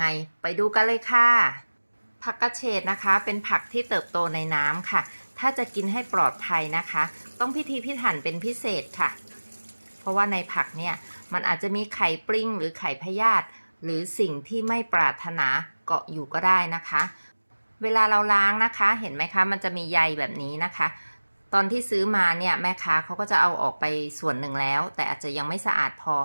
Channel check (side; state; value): both; inverted; correlation -1.00